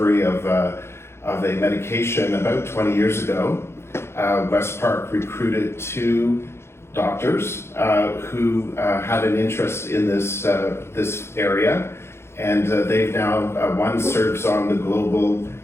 of a medication about 20 years ago, WestPark recruited 2 doctors who had an interest in this area, and they've now, one serves on the global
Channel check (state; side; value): late; right; 0.12 ms